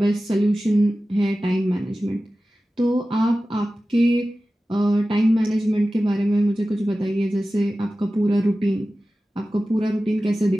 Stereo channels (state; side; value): normal; both; correlation 0.95